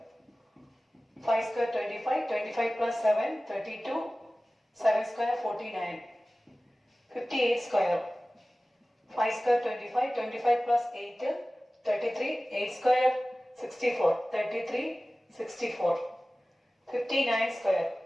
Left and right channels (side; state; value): both; normal; correlation 0.97